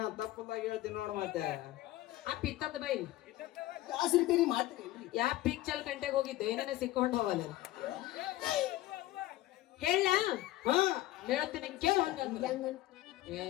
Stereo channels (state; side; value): quieter; right; 16.1 dB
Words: ತಪ್ಪದಾಗ ಹೇಳ್ತೀನಿ ನೋಡು. ಮತ್ತೆ ಆ ಪಿತ್ತದ ಬೈಲ್ ಯಾ ಪಿಕ್ಚರ್ ಗಂಟೆಗೆ ಹೋಗಿದ್ದೆ, ಏನೇನೆ ಸಿಕ್ಕೊಂಡು ಹೋಗಲ್ಲ. ಹೇಳ ಹೇಳ್ತೀನಿ ಕೇಳ.